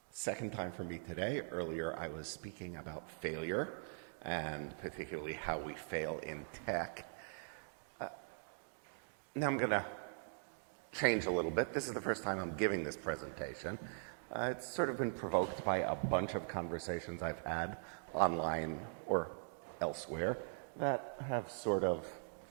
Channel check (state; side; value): silent; left; digital silence